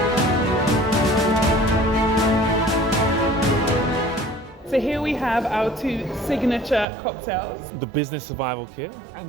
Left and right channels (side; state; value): left; drops out; at 6.9 s